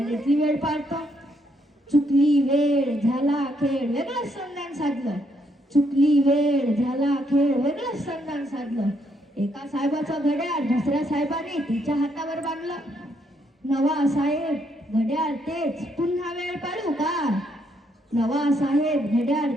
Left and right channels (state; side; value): normal; both; correlation 0.74